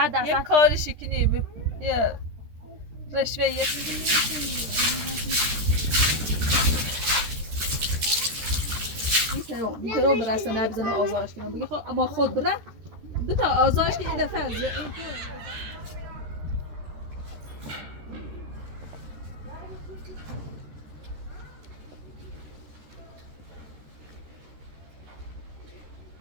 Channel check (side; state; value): left; late; 13 ms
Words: یه کارشی کنی یه رشوه یه میشه رو برسه نبزنه آزارش کنم بگی خب اما خود بره دو تا آزارش که این دفعه از